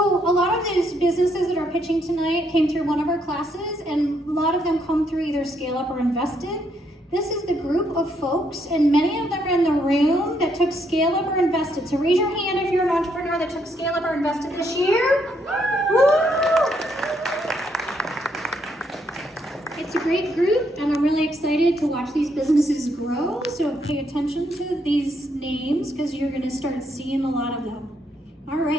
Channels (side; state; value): both; normal; correlation 0.74